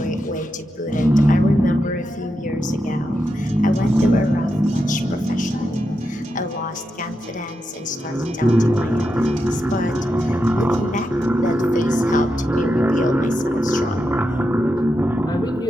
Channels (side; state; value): both; normal; correlation 0.86